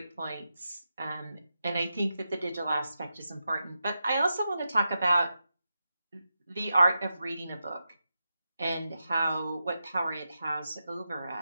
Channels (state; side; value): inverted; both; correlation -0.89